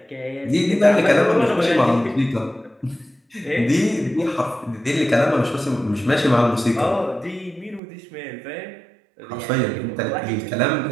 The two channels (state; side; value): drops out; left; at 7.8 s